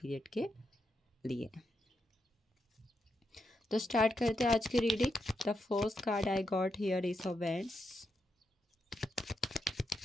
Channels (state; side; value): normal; both; correlation 0.84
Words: के लिए। तो स्टार्ट करते हैं आज की reading. The first card I got here is of wands,